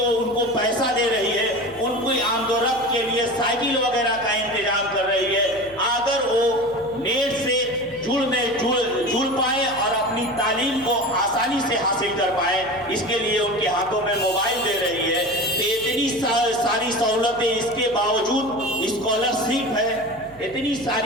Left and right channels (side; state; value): left; noise; hum, 23 dB below the sound